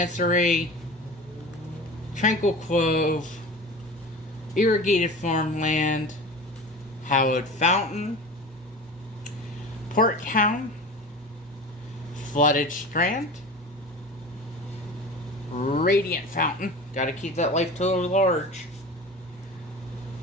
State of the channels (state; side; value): normal; both; correlation 0.34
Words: Tranquil Cove. Irrigated Farmland. Hallowed Fountain. Port Town. Flooded Strand. Radiant Fountain. Gotta keep that life total large.